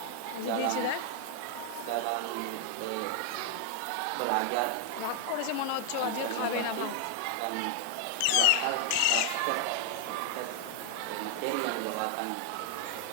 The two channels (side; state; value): both; different; correlation 0.00